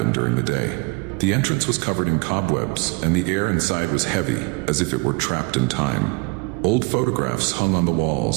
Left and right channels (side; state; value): left; quieter; 29.6 dB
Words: during the day. The entrance was covered in cobwebs, and the air inside was heavy, as if it were trapped in time. Old photographs hung on the